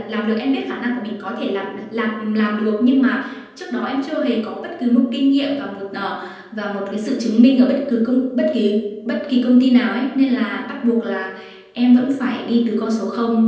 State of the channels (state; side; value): identical; both; correlation 1.00